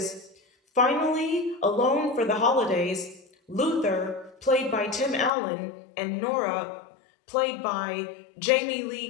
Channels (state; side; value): drops out; right; at 5.3 s